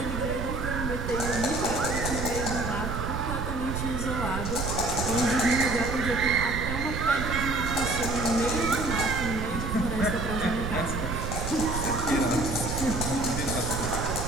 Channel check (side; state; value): right; noise; rumble, 4 dB below the sound